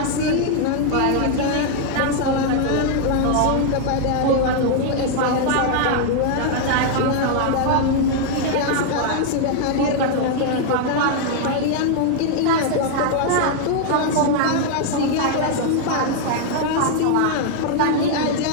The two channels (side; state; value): both; different; correlation 0.00